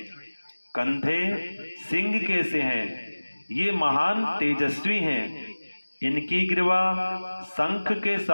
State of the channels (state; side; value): inverted; both; correlation -1.00